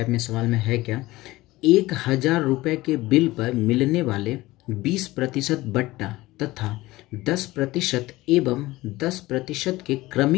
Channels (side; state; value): right; quieter; 18.7 dB